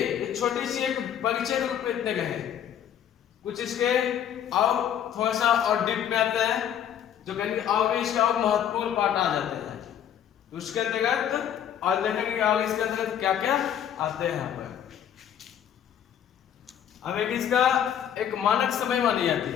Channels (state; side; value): quieter; right; 9.7 dB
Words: छोटी सी एक परिचय रूप में इतने गए, कुछ इसके और थोड़ा सा और डीप में आते हैं, जो कहेंगे और भी इसका और महत्वपूर्ण पार्ट आ जाते हैं। तो उसके अंतर्गत और देखेंगे और इसके अंतर्गत क्या क्या आते हैं यहाँ पर। अब एक इसका एक मानक समय मानी जाती